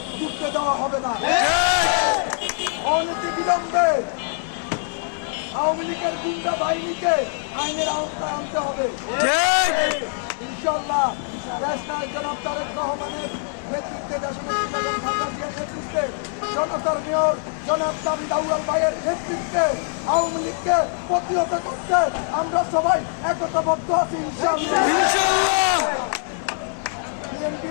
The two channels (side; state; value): right; silent; 63 dB below the other